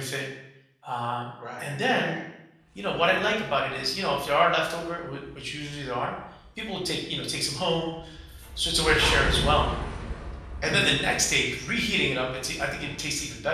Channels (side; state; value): both; identical; correlation 1.00